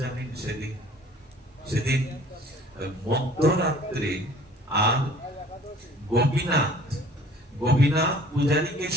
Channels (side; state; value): both; normal; correlation 0.51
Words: জানেন সেদিন? সেদিন মধ্যরাত্রে আর গোপীনাথ পূজারীকে